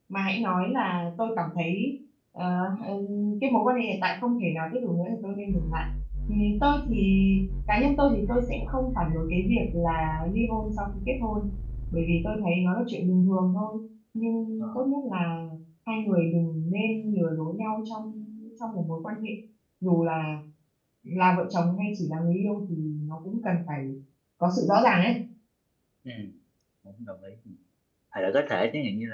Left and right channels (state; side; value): identical; both; correlation 1.00